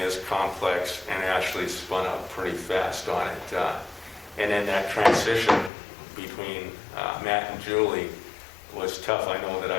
complex, and Ashley spun up pretty fast on it. And then that transition between Matt and Julie was tough. I know that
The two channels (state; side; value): drops out; right; at 5.7 s